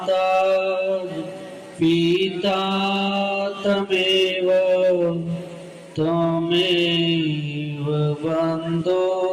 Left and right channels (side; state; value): both; identical; correlation 1.00